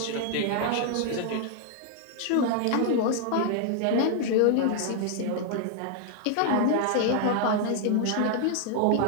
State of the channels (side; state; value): both; different; correlation 0.00